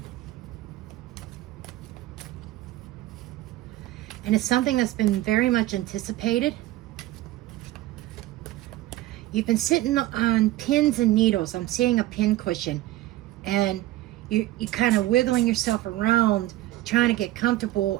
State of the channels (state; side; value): quieter; left; 16.0 dB